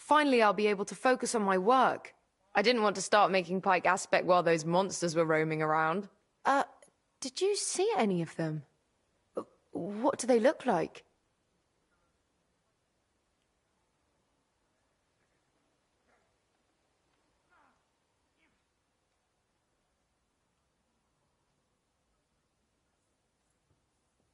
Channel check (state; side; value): identical; both; correlation 1.00